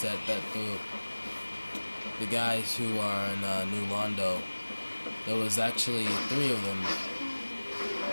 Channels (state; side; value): inverted; both; correlation -1.00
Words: that the guys who are in New Londo. There was actually 3 of them,